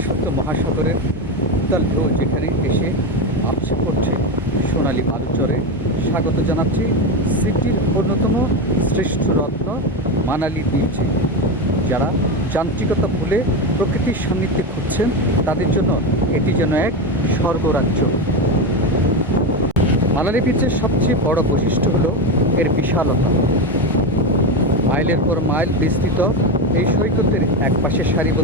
মহাসাগরের উত্তাল ঢেউ যেখানে এসে আপসে পড়ছে সোনালী বালুচরে স্বাগত জানাচ্ছি সিটির অন্যতম শ্রেষ্ঠ রত্ন মানালি বিচে। যারা যান্ত্রিকতা ভুলে প্রকৃতির সান্নিধ্যে খুঁজছেন তাদের জন্য এটি যেন এক স্বর্গরাজ্য। মানালি বিচের সবচেয়ে বড় বৈশিষ্ট্য হলো এর বিশালতা। মাইলের পর মাইল বিস্তৃত এই সৈকতের এক পাশে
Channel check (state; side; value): normal; both; correlation 0.15